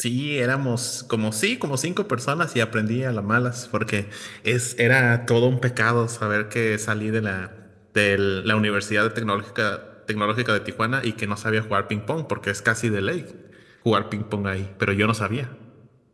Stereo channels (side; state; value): both; identical; correlation 1.00